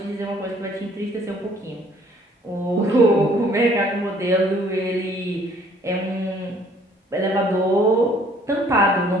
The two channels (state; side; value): normal; both; correlation 0.59